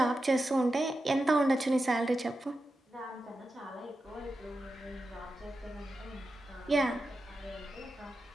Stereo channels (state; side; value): normal; both; correlation 0.91